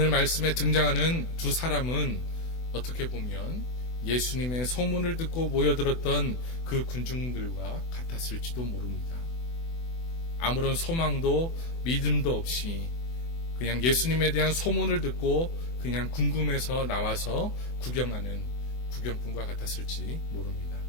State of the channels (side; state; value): right; late; 24 ms